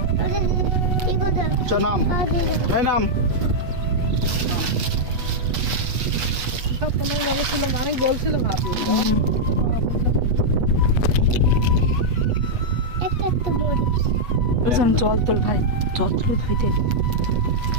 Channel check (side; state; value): left; late; 8.1 ms